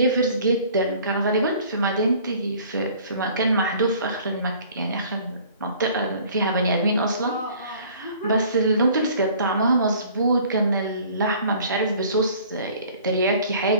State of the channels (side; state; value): both; inverted; correlation -0.52